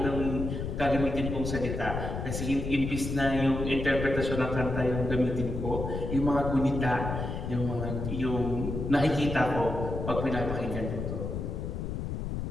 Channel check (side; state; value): left; noise; rumble, 4 dB below the sound